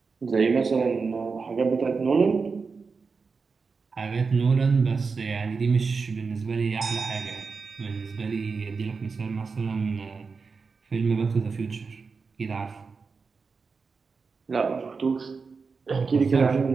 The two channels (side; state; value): left; quieter; 4.8 dB